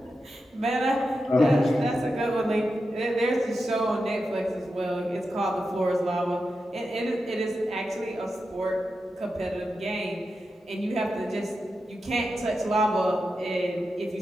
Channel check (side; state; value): both; normal; correlation 0.89